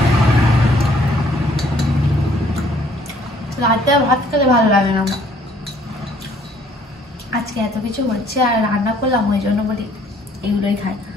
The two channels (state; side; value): normal; both; correlation 0.61